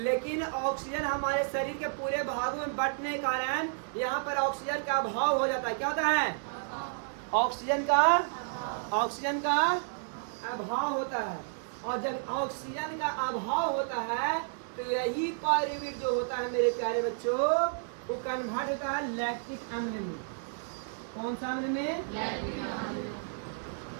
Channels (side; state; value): left; silent; 57 dB below the other